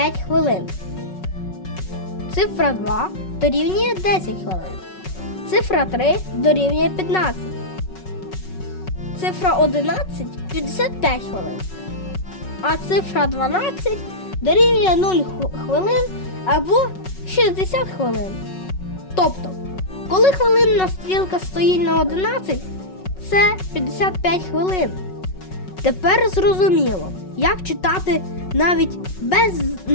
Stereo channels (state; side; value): late; right; 5.4 ms